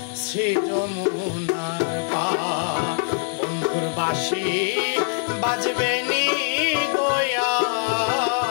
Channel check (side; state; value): right; silent; 58 dB below the other